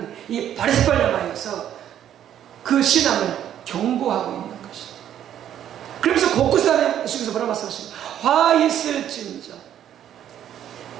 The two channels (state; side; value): quieter; left; 10.5 dB